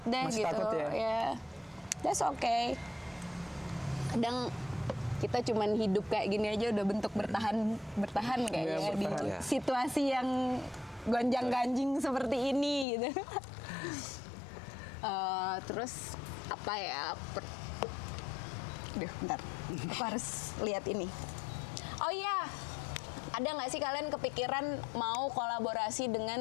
deh Masih gitu. takut ya? That's okay. Kadang kita cuman hidup kayak gini aja udah bentuk bertahan kayaknya Iya, di bertahan. situasi yang gonjang-ganjing seperti ini gitu. Terus apa ya? Duh, bentar. Aku harus lihat ini. Oh iya, ada nggak sih kalian kepikiran mau kolaborasi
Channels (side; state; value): right; drops out; at 12.9 s